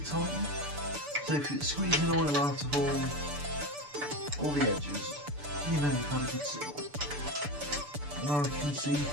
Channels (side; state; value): left; late; 6.8 ms